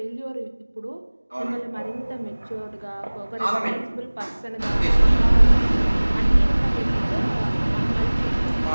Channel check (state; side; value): inverted; both; correlation -1.00